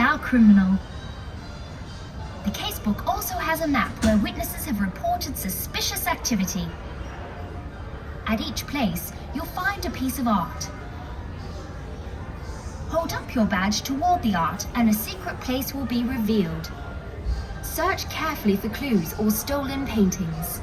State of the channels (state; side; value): identical; both; correlation 1.00